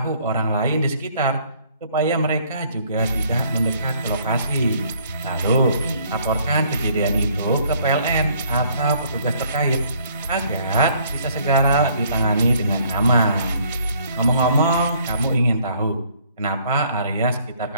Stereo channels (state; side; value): inverted; both; correlation -0.62